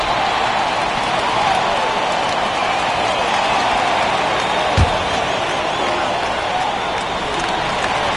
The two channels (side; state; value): both; identical; correlation 1.00